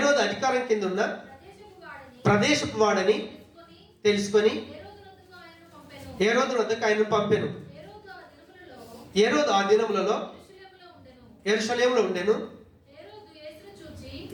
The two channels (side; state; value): both; identical; correlation 1.00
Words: అధికారం కింద ఉన్న ప్రదేశపు వాడని తెలుసుకొని హేరోదు వద్దకు ఆయనను పంపెను. హేరోదు ఆ దినములలో యెరూషలేములో ఉండెను.